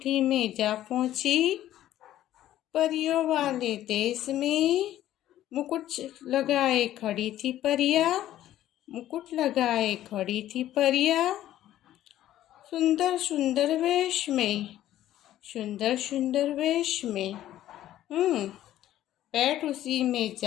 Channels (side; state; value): right; quieter; 13.1 dB